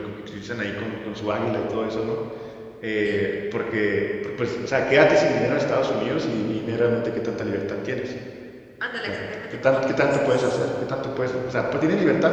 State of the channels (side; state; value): both; identical; correlation 1.00